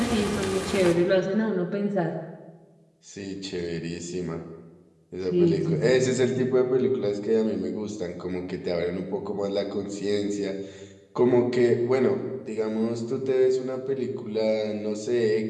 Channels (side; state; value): both; identical; correlation 1.00